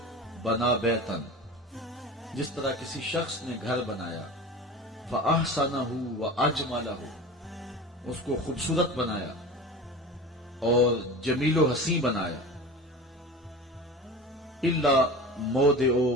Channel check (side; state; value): both; normal; correlation 0.33